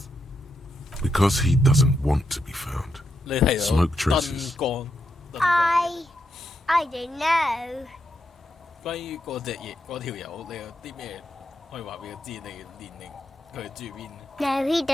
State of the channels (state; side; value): normal; both; correlation 0.82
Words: Because he doesn't want to be found. 你睇到 Smoke traces. 燈光。 I don't know. 關於嗰條友，你有啲咩可以話俾佢知？你年齡佢住邊？ No, he